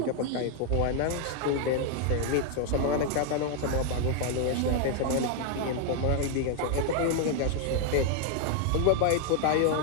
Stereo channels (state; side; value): different; both; correlation 0.00